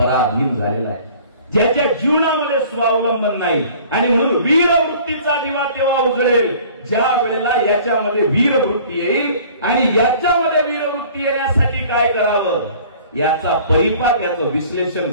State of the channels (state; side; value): inverted; both; correlation -0.50